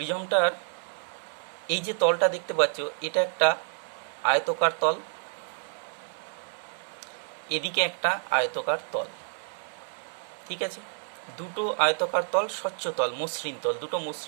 এই যে তলটা দেখতে পাচ্ছ, এটা একটা আয়তকার তল, এদিকে একটা আয়তকার তল। ঠিক আছে, দুটো আয়তকার তল, স্বচ্ছ তল, মসৃণ তল, দুটো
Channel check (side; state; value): left; silent; 55 dB below the other